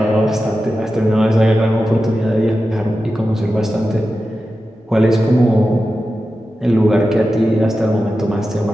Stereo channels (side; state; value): both; normal; correlation 0.92